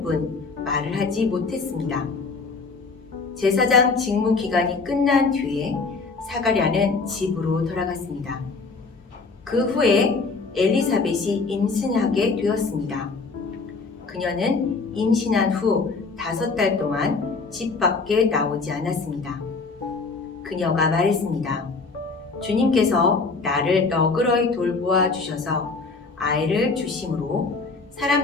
뿐 말을 하지 못했습니다. 제사장 직무 기간이 끝난 뒤에 사가랴는 집으로 돌아갔습니다. 그 후에 엘리사벳이 임신하게 되었습니다. 그녀는 임신한 후 5달 동안 집 밖에 나오지 않았습니다. 그녀가 말했습니다. 주님께서 나를 너그러이 돌보아 주셔서 아이를 주심으로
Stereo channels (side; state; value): right; quieter; 4.2 dB